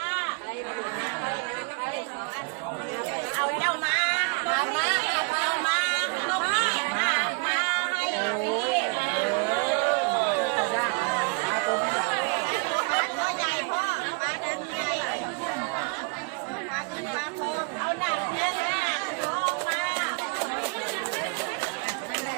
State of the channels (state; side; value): quieter; left; 33.8 dB